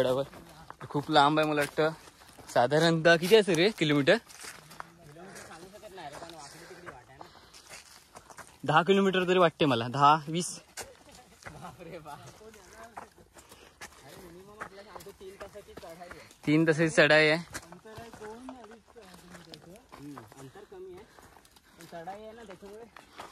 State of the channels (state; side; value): identical; both; correlation 1.00